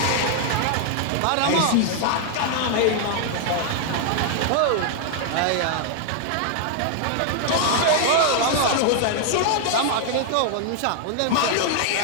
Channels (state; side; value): different; both; correlation 0.00